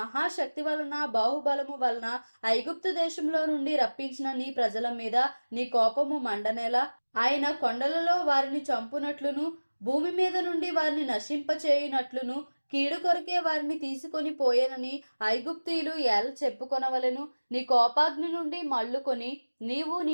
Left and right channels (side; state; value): both; inverted; correlation -1.00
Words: వలన బాహుబలము వలన ఐగుప్తు దేశంలో నుండి రప్పించిన నీ ప్రజల మీద నీ కోపము మండనేలా? ఆయన కొండలలో వారిని చంపునట్లును భూమి మీద నుండి వారిని నశింపచేయునట్లును కీడు కొరకే వారిని తీసుకొని పోయేనని ఐగుప్తీయులు ఎలా చెప్పుకొనవలెను? నీ కోపాగ్ని నుండి మళ్ళుకొని నీవు నీ